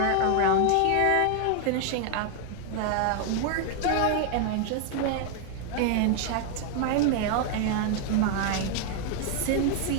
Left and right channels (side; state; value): both; different; correlation 0.00